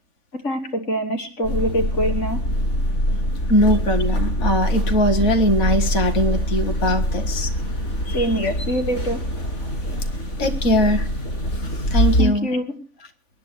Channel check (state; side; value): late; right; 3.5 ms